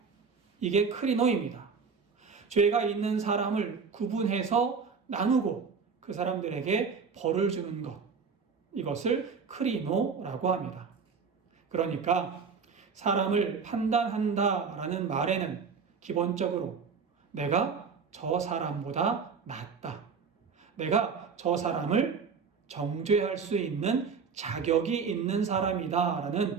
이게 크리노입니다. 죄가 있는 사람을 구분해서 나누고 그 사람들에게 벌을 주는 것, 이것을 크리노라고 합니다. 그러니까 사람을 판단한다라는 말에는 기본적으로 내가 저 사람보다 낫다, 내가 저 사람을 정죄할 수 있는 자격이 있는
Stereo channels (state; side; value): quieter; left; 5.6 dB